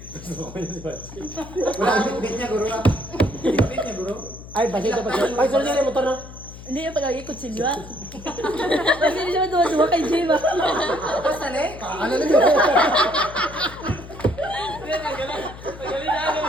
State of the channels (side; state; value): left; noise; hum, 15 dB below the sound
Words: Wala ang bit niya, guro. Bit niya, guro. Ay, basic dapat siya. Ay, sorry na motor na. Hindi yung pag-agi ko silwa. Kasi hindi siya duwa kay Jay ba? Basta na eh. Ano na yun?